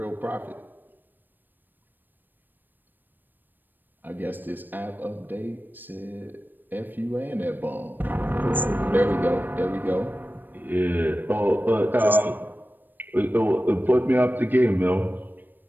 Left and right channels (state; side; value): late; left; 0.091 ms